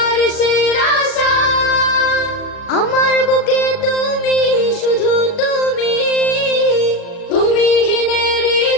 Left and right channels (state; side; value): late; right; 38 ms